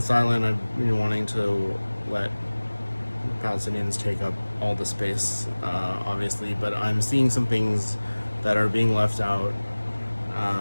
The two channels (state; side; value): inverted; both; correlation -1.00